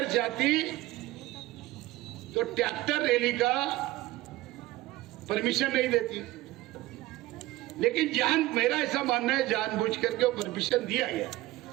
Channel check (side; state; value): left; quieter; 17.7 dB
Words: चाहती तो ट्रैक्टर रैली का परमिशन नहीं देती, लेकिन मेरा ऐसा मानना है जानबूझ करके वो परमिशन दिया गया,